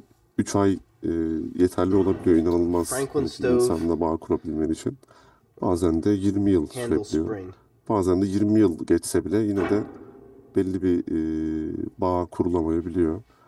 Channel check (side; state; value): both; identical; correlation 1.00